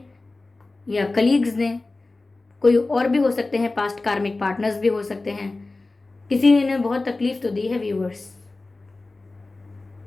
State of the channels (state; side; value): quieter; right; 3.3 dB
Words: या कलीग्स ने, कोई और भी हो सकते हैं, पास्ट कार्मिक पार्टनर्स भी हो सकते हैं. किसी ने इन्हें बहुत तकलीफ तो दी है व्यूअर्स.